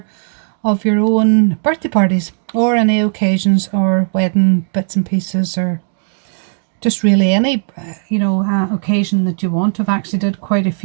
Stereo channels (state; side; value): silent; left; digital silence